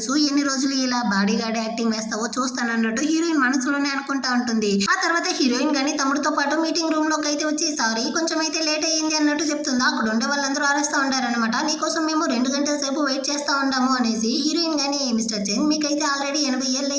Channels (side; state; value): both; identical; correlation 1.00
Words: ఎన్ని రోజులు ఇలా బాడీ గార్డ్ యాక్టింగ్ వేస్తావో చూస్తానన్నట్టు హీరోయిన్ మనసులోనే అనుకుంటా ఉంటుంది. ఆ తర్వాత హీరోయిన్ కానీ తమ్ముడితో పాటు మీటింగ్ రూమ్ లోకి అయితే వచ్చి సారీ కొంచెం అయితే లేట్ అయ్యింది అన్నట్టు చెప్తుందా. అక్కడ ఉండే వాళ్ళందరూ అరుస్తూ ఉంటారనమాట. నీకోసం మేము 2 గంటల సేపు వెయిట్ చేస్తా ఉంటాము అనేసి. హీరోయిన్ కానీ మిస్టర్ చెన్ మీకైతే ఆల్రెడీ 80 ఏళ్ళు